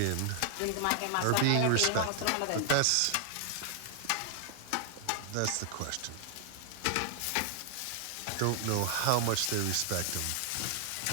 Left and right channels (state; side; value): different; both; correlation 0.00